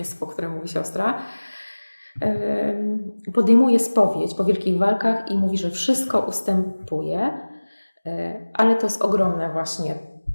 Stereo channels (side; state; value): both; inverted; correlation -1.00